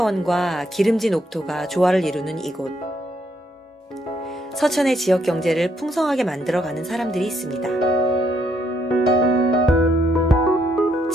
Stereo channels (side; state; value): both; normal; correlation 0.73